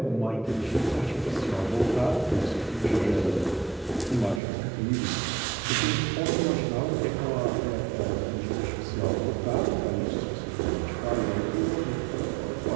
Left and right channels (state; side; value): drops out; left; at 4.4 s